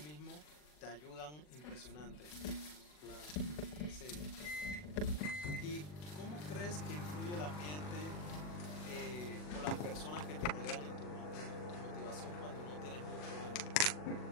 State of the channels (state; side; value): late; right; 40 ms